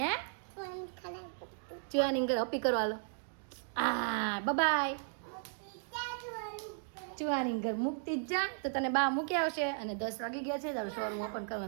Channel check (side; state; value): left; silent; digital silence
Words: ચુવાની ઘર અપી કરવા લો. બાય ચુવાની ઘર મૂકતી જ જા. તો તને બા મૂકી આવશે. અને 10 વાગી ગયા છે, તારું શોરૂમ ઓપન કરવાનો